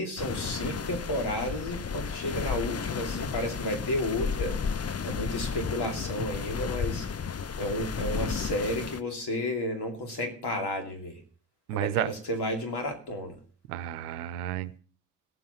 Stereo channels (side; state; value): both; normal; correlation 0.11